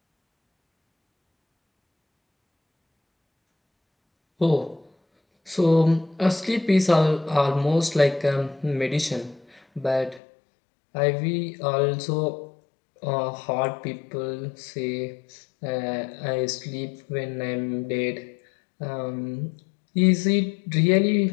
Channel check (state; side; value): drops out; right; at 10.2 s